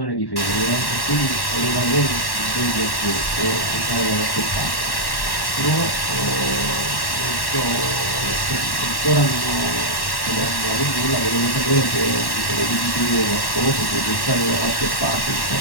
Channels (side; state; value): right; late; 1.1 ms